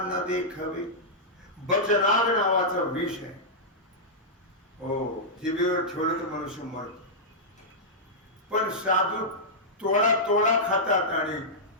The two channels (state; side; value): normal; both; correlation -0.11